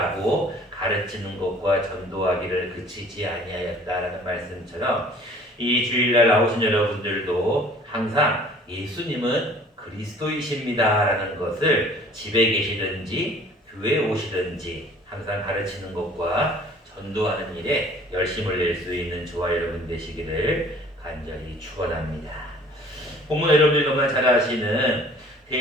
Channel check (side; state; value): both; normal; correlation 0.51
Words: 가르치는 것과 전도하기를 그치지 아니하였다라는 말씀처럼 이 주일날 나오신 여러분들도 항상 예수님은 그리스도이십니다라는 것을 집에 계시든지 교회에 오시든지 항상 가르치는 것과 전도하는 일에 열심을 낼 수 있는 저와 여러분 되시기를 간절히 축원합니다. 본문 여러분들이 너무나 잘 아시는